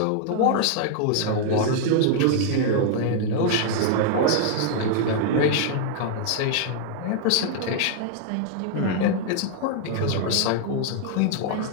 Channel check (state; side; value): different; both; correlation 0.00